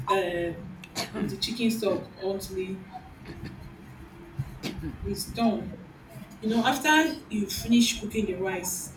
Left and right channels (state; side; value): identical; both; correlation 1.00